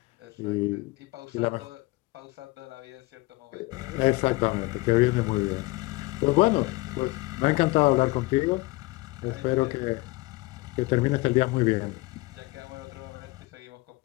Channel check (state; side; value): quieter; right; 22.1 dB